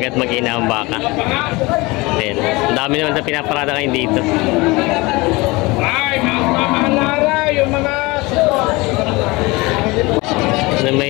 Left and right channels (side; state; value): right; quieter; 23.3 dB